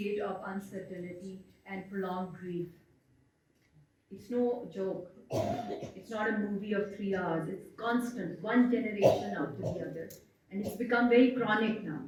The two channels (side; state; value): both; identical; correlation 1.00